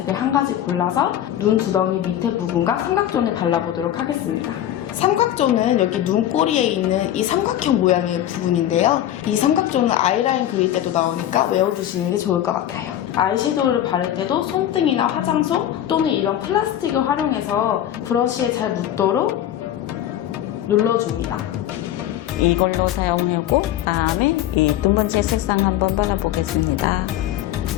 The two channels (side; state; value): right; quieter; 11.9 dB